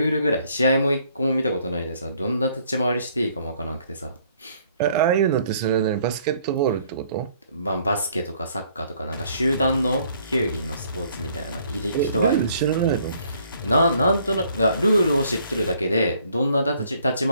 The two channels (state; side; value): inverted; both; correlation -0.63